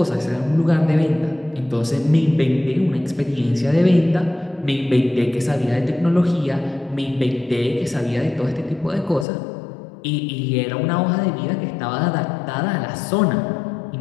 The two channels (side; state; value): right; drops out; at 9.2 s